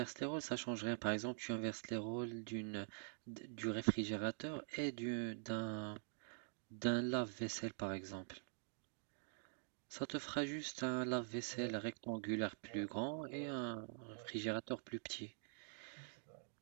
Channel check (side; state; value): left; silent; digital silence